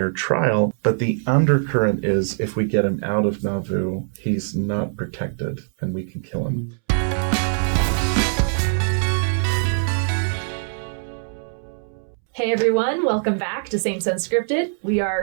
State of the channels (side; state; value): left; silent; 64 dB below the other